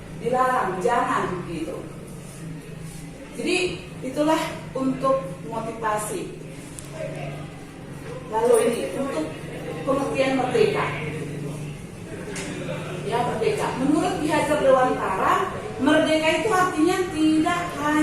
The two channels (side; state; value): both; identical; correlation 1.00